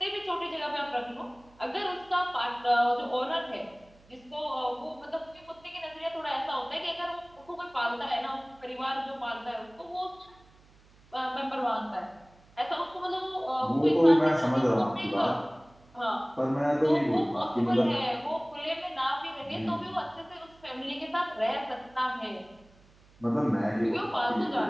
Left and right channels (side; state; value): right; noise; hum, 28 dB below the sound